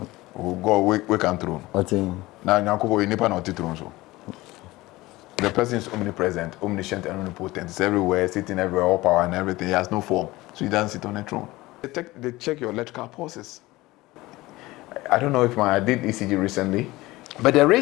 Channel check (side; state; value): right; quieter; 19.4 dB